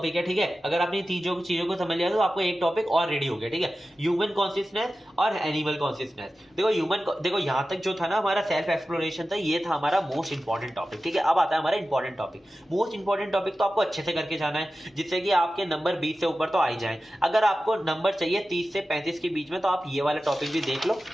है, ठीक है। अगर आपने 3 चीजों को समझ लिया तो आपको एक टॉपिक और रेडी हो गया, ठीक है। ह्यूमन कॉन्शियसनेस और एनिमल कॉन्शियसनेस। देखो यहां तक जो था ना हमारा सेल्फ एक्सप्लोरेशन था, ये था हमारा मोस्ट इंपॉर्टेंट टॉपिक, ठीक है। अब आता है हमारा important topic. Most important topic तो आपको अच्छे से करके जाना है, जिससे कि आपके नंबर 20 से ऊपर तो आ ही जाए। अगर आपको नंबर चाहिए 30 से 35 के बीच में, तो आप ये वाला टॉपिक भी देख लो,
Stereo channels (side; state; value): both; normal; correlation 0.94